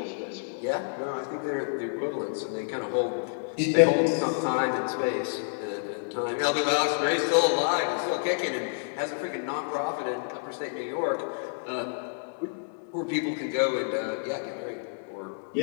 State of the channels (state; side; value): silent; right; digital silence